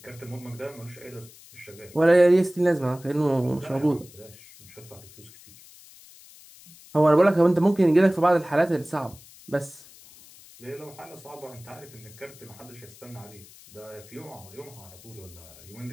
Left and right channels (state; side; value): noise; left; hiss, 22 dB below the sound